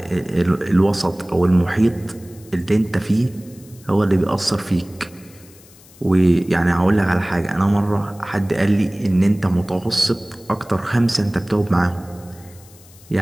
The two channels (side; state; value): left; noise; hiss, 24 dB below the sound